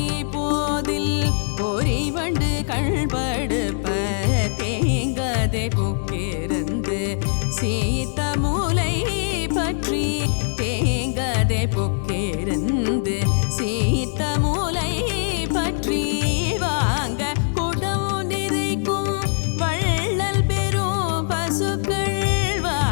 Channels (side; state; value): right; silent; digital silence